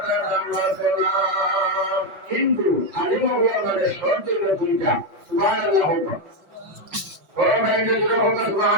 তার দাম বাড়তো না কিন্তু আলিম আমাদের শর্ত হলো দুইটা সুবহানাল্লাহ হোক ও ভাই যে হোক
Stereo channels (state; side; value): late; left; 5.5 ms